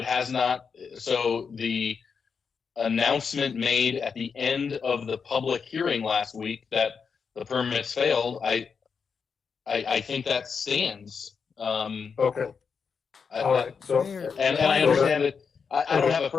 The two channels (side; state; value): right; quieter; 5.9 dB